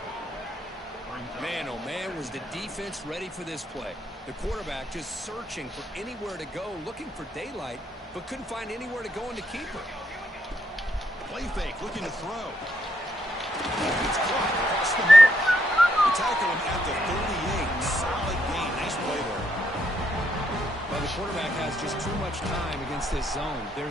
Man, oh man, was the defense ready for this play. The quarterback just searching for anywhere to go, looking for daylight, but couldn't find anywhere to go in the keeper. Play fake, looking to throw. It's caught across the middle. They tackle him at the 38. Solid gain. Nice play there. Well, the quarterback has just too much time against this zone.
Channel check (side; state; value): both; normal; correlation 0.76